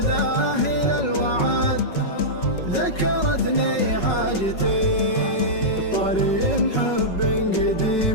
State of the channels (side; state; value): right; late; 5.4 ms